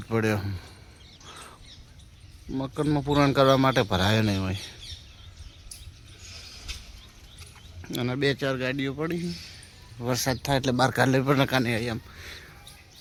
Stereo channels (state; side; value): identical; both; correlation 1.00